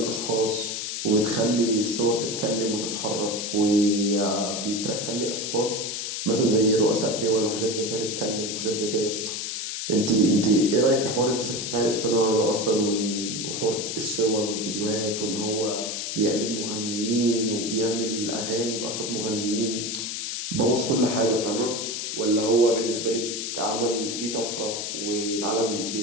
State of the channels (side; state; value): left; noise; hiss, 4 dB below the sound